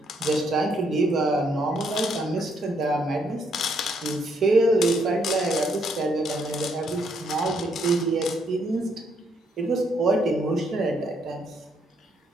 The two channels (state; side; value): normal; both; correlation 0.72